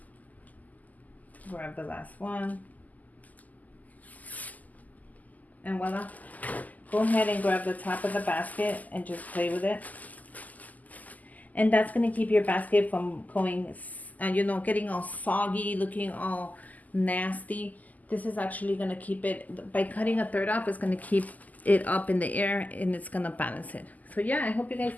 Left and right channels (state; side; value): late; right; 0.080 ms